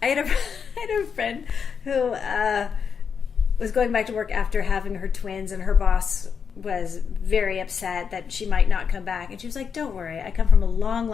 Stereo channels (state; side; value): quieter; right; 6.5 dB